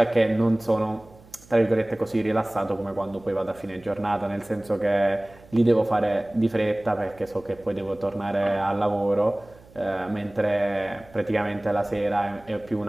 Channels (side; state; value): right; noise; hum, 25 dB below the sound